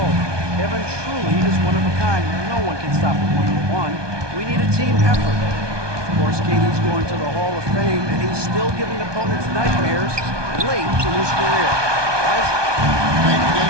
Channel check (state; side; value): late; left; 1.2 ms